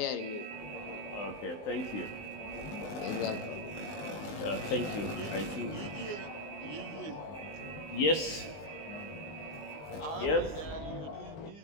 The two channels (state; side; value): late; right; 19 ms